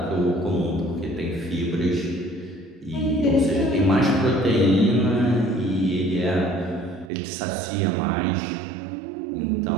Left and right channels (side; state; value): left; drops out; at 7.1 s